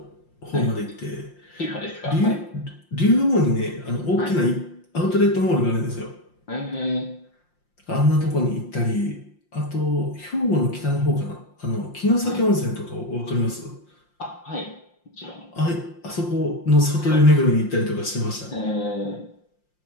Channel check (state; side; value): late; right; 5.7 ms